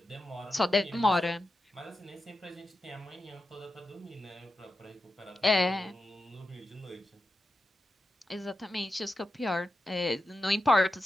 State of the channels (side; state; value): both; normal; correlation 0.91